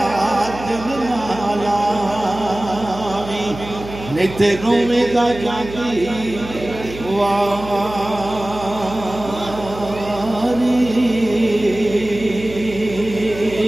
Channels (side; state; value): right; noise; hum, 13 dB below the sound